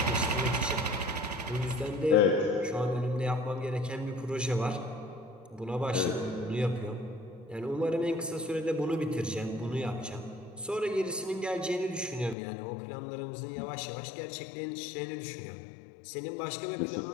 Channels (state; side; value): drops out; right; at 12.4 s